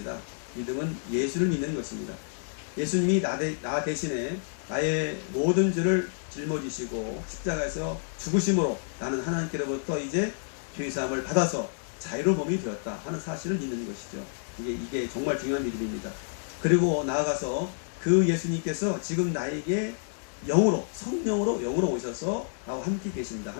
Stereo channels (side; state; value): right; silent; 59 dB below the other